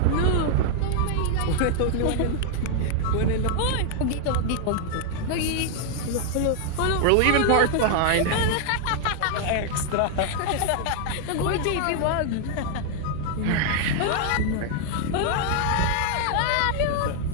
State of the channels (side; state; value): both; different; correlation 0.00